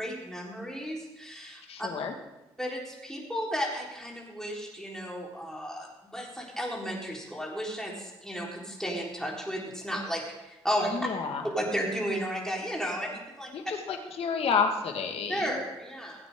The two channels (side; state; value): both; normal; correlation 0.58